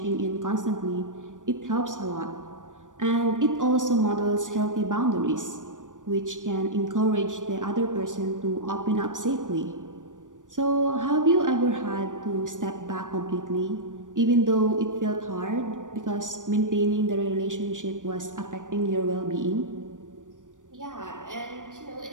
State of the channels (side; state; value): left; late; 0.87 ms